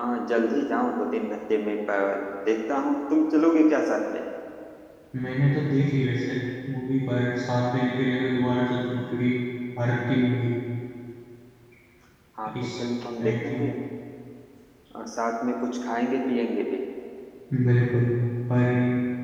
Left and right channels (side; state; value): both; identical; correlation 1.00